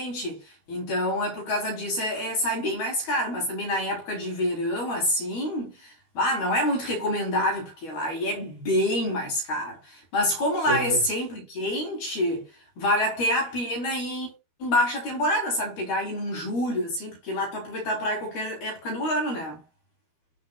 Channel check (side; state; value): right; late; 13 ms